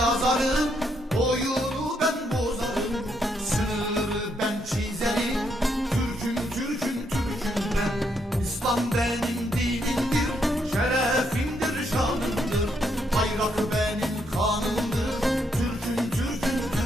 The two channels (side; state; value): both; normal; correlation 0.76